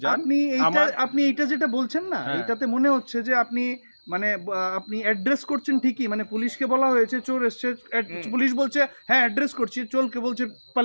আপনি এইটা যেটা বলছেন না, হ্যাঁ। এটাতে মনে হচ্ছে যে আপনি মানে আপনি অ্যাড্রেস করছেন ঠিকই, মানে পুলিশকে বলা হয়েছে চোর এসছে, পুলিশ বলছে হ্যাঁ অ্যাড্রেস করছি, চোরকে বলছে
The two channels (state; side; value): inverted; both; correlation -1.00